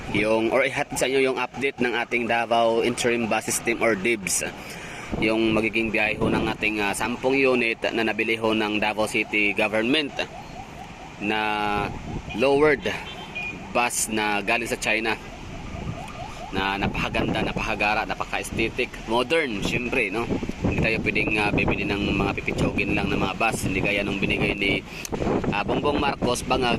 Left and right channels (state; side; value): identical; both; correlation 1.00